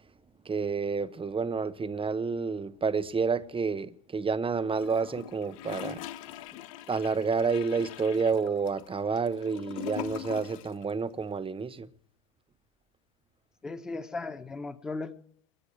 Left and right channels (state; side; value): quieter; left; 4.0 dB